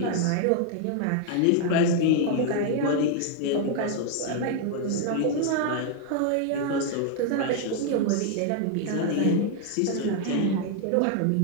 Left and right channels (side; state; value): both; different; correlation 0.00